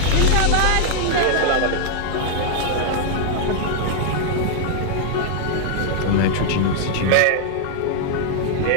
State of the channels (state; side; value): different; both; correlation 0.00